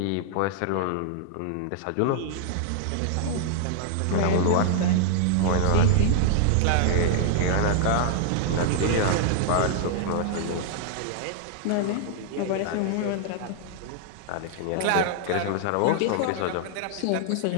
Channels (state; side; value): different; both; correlation -0.01